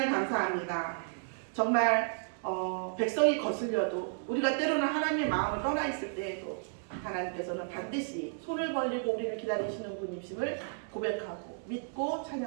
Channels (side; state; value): left; silent; digital silence